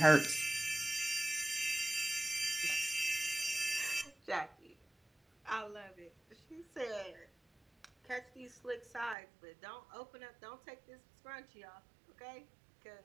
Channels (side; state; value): left; drops out; at 9.2 s